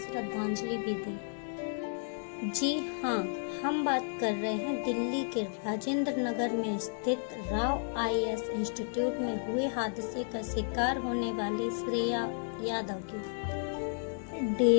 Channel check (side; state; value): right; silent; digital silence